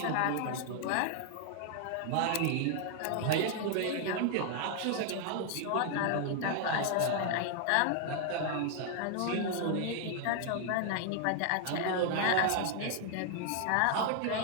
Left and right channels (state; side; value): different; both; correlation 0.00